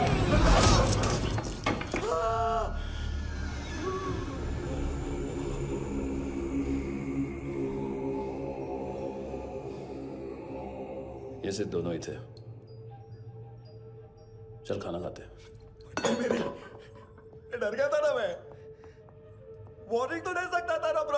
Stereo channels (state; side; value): identical; both; correlation 1.00